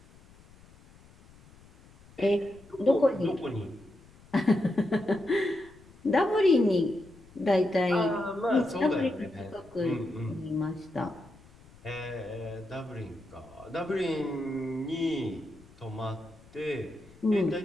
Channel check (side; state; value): left; noise; rumble, 24 dB below the sound